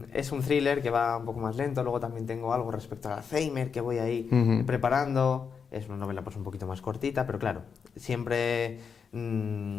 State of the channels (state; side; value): quieter; right; 6.2 dB